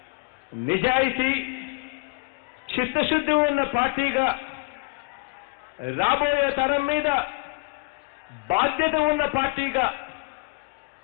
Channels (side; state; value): right; quieter; 29.1 dB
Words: నిజాయితీ చిత్తశుద్ధి ఉన్న పార్టీగా రాబోయే తరం మీద బాధ్యత ఉన్న పార్టీగా